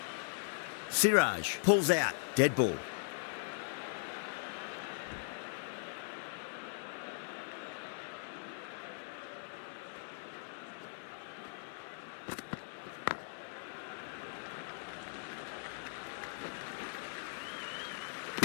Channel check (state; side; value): silent; right; digital silence